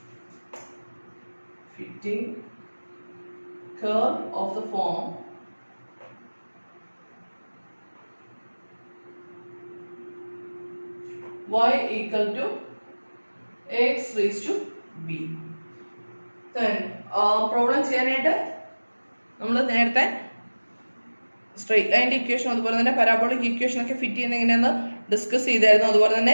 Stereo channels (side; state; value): both; inverted; correlation -1.00